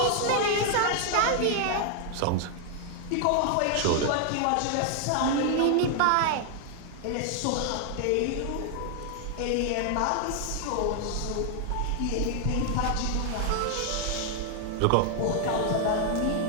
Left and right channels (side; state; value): both; different; correlation 0.00